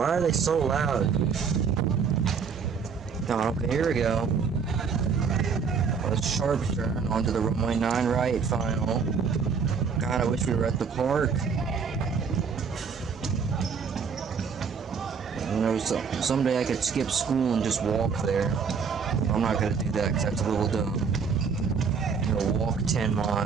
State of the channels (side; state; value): left; quieter; 6.0 dB